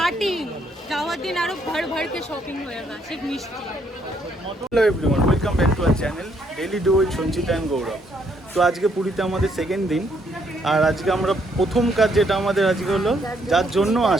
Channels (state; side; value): normal; both; correlation 0.71